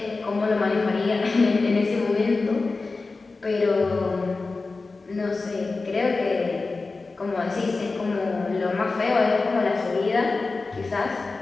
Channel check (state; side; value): quieter; right; 3.8 dB